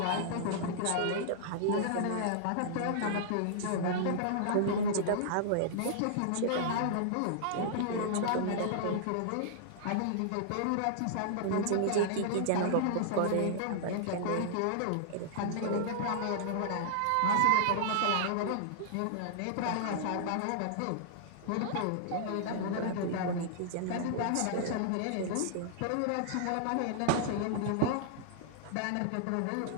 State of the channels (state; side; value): different; both; correlation -0.01